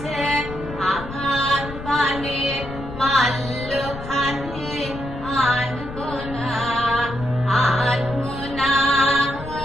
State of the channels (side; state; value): left; noise; rumble, 11 dB below the sound